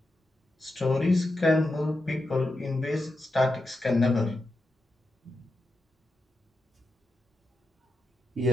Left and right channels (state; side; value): normal; both; correlation 0.88